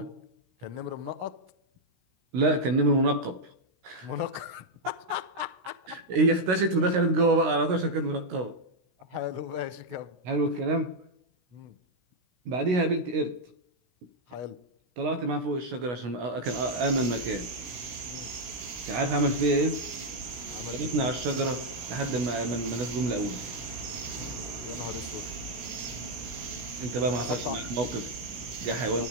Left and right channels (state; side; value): late; left; 16 ms